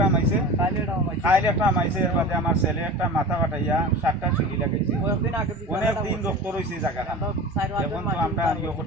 নামাইছে খাইলে একটা নামাইছে এর বাদে আমার ছেলে একটা মাথা কাটাইয়া 7টা ছুটি লাগাইছে অনেক দিন রক্ত রয়েছে এই জায়গাটা এখন তো আমরা ইয়ে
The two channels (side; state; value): both; normal; correlation 0.33